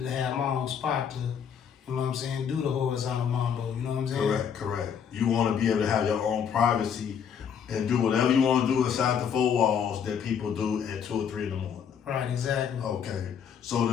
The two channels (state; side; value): quieter; right; 7.6 dB